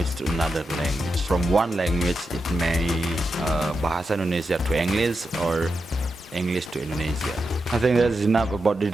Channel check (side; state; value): both; normal; correlation 0.88